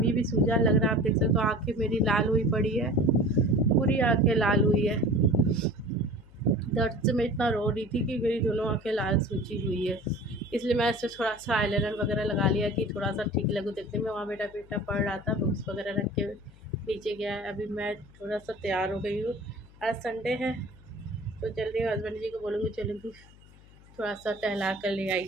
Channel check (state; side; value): noise; left; hum, 24 dB below the sound